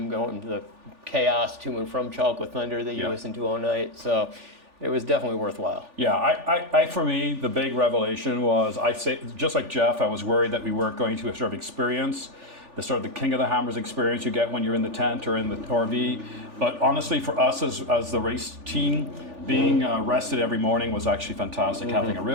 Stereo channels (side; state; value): left; late; 3.4 ms